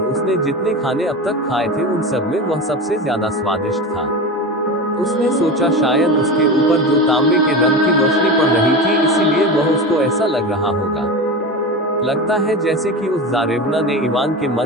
उसने जितने खाने अब तक खाए थे उन सब में वह सबसे ज्यादा स्वादिष्ट था। उसने सोचा शायद उसके ऊपर जो तांबे के रंग की रोशनी पड़ रही थी इसीलिए वह उसको ऐसा लग रहा होगा। लगता है जैसे कि उस जारेबना ने इवान के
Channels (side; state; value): both; normal; correlation 0.25